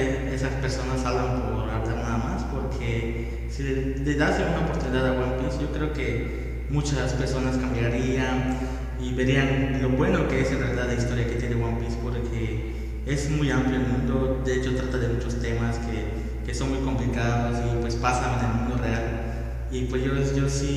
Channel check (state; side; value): identical; both; correlation 1.00